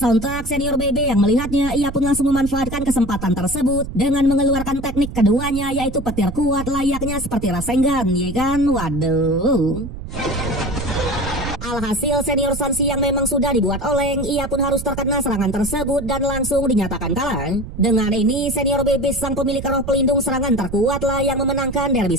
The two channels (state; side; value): noise; right; rumble, 9 dB below the sound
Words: senior BB yang melihatnya, ia pun langsung memanfaatkan kesempatan tersebut dengan mengeluarkan teknik keduanya, yaitu petir kuat layaknya seperti Rasengan, ya kan? Waduh. Alhasil senior Sanshi yang memang sudah dibuat oleng, ia pun harus terkena serangan tersebut dan langsung dinyatakan kalah. Dengan ini senior BB sang pemilik roh pelindung serangan terkuatlah yang memenangkan derby